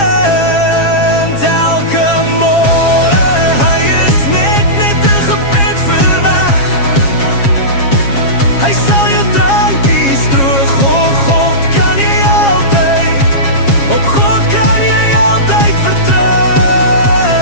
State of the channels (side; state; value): right; late; 7.4 ms